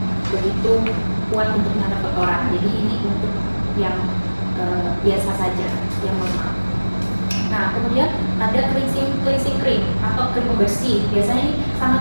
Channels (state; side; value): inverted; both; correlation -1.00